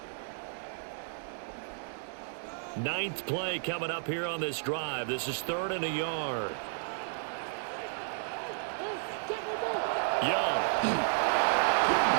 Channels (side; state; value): left; silent; digital silence